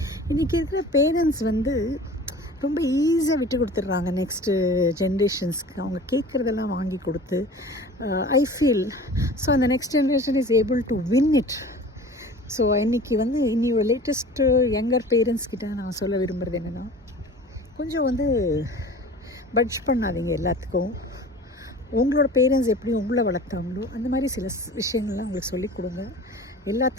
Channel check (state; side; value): normal; both; correlation 0.41